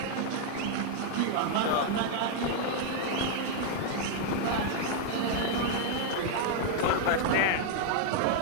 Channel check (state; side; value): different; both; correlation 0.00